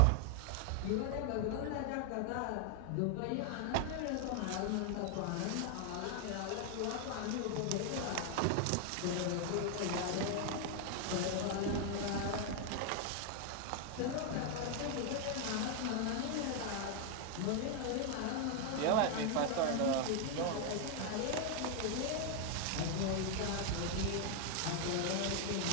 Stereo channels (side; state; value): both; different; correlation 0.00